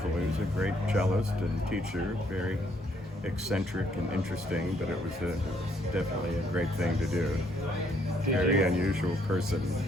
He was a great cellist and teacher, very eccentric and interesting, but it was definitely a great thing to do. Very unusual person.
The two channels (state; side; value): normal; both; correlation 0.69